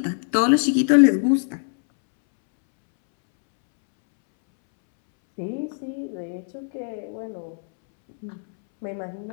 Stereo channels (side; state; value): right; silent; 64 dB below the other